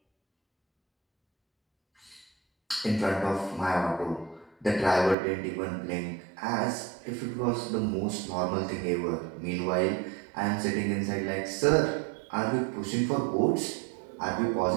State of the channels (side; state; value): left; drops out; at 5.2 s